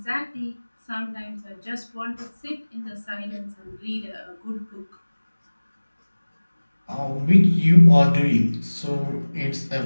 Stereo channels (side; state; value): both; inverted; correlation -1.00